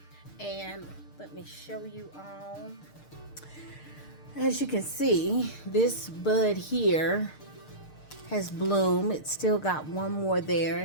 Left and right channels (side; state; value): right; late; 6.6 ms